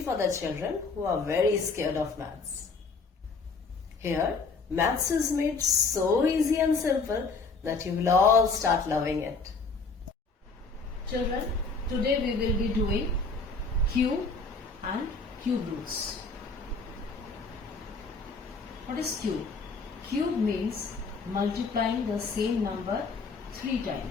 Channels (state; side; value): quieter; right; 4.2 dB